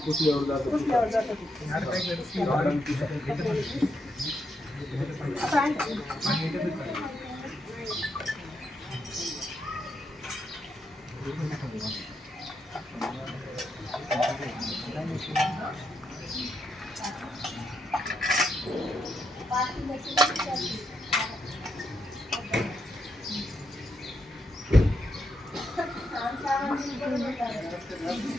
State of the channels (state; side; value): normal; both; correlation 0.81